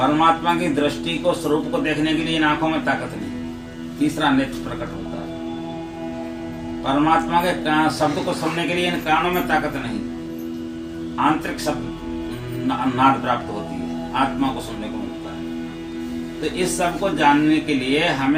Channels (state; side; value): identical; both; correlation 1.00